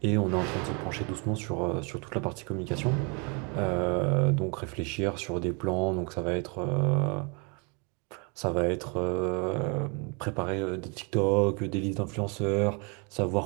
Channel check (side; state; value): left; quieter; 33.9 dB